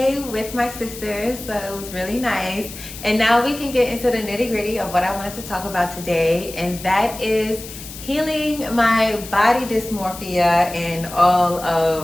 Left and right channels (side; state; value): left; noise; hiss, 13 dB below the sound